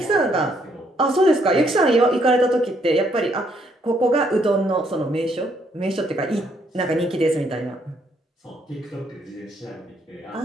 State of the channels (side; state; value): both; normal; correlation 0.70